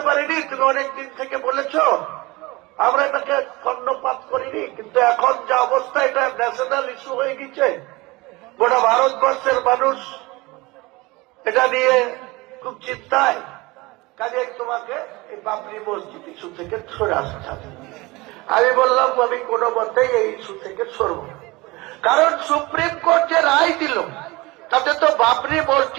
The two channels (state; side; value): quieter; left; 22.7 dB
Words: পারিনি, তুমি অনেকদিন থেকে বলেছ, আমরা এটাকে কর্ণপাত করিনি, কিন্তু এখন যা অবস্থা এটা ন্যাশনাল ইস্যু হয়ে গেছে, গোটা ভারতবর্ষের মানুষ এটা নিয়ে খুব চিন্তায়, কাজে তোমাকে এই বাবরি মসজিদ ইস্যু থেকে সরে আসতে হবে। আমি বললাম আমি কোনো মতেই এই ইস্যু থেকে সরব না, কারণ সুপ্রিম কোর্ট যে রায় দিল তাতে তো বাবরি